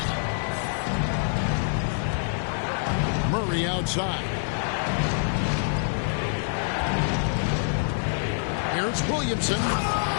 Murray outside. Here's Williamson.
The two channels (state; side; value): silent; right; digital silence